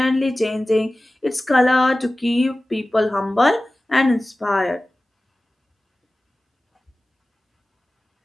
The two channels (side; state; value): both; normal; correlation 0.97